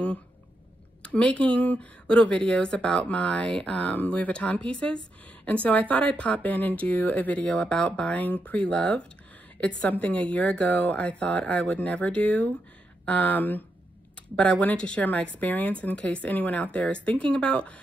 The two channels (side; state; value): both; normal; correlation 0.83